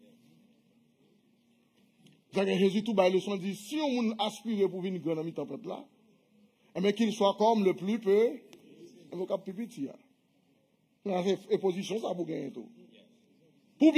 Jésus tout bas leçon dit, si on aspire pour venir grand ami tempête là, mais qu'il soit comme le plus peu, on va plus petit. Et position, ça pour gagner tout. Pour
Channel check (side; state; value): both; identical; correlation 1.00